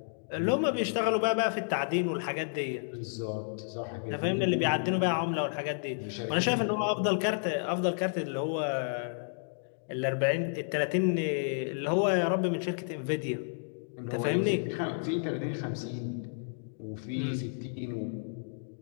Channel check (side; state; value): right; silent; digital silence